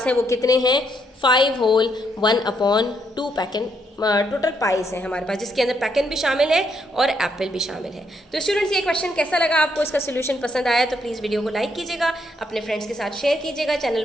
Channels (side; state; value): both; normal; correlation 0.75